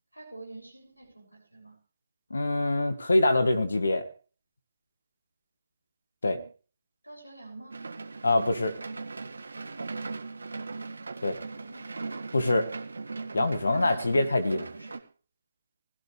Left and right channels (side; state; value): both; inverted; correlation -0.92